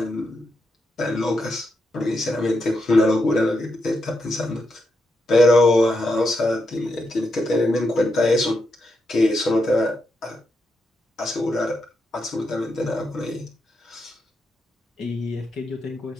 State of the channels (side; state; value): both; normal; correlation 0.84